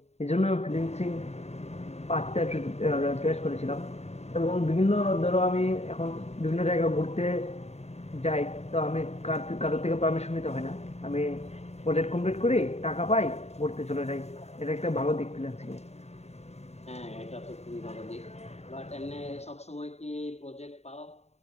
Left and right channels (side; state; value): right; late; 0.32 ms